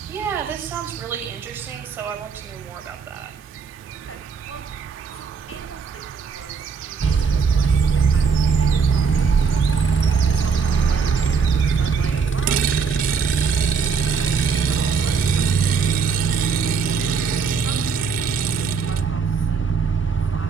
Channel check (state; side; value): quieter; left; 5.6 dB